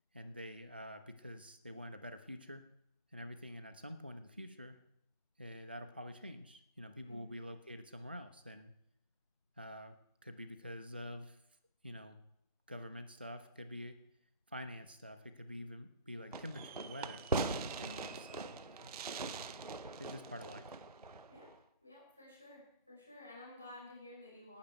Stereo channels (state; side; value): inverted; both; correlation -0.47